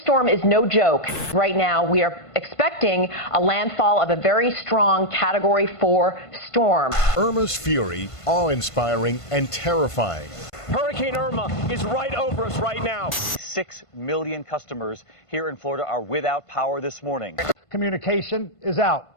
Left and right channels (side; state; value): right; late; 1.5 ms